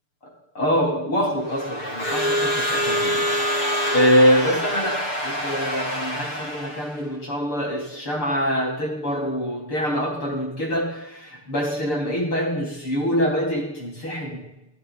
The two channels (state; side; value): late; right; 6.7 ms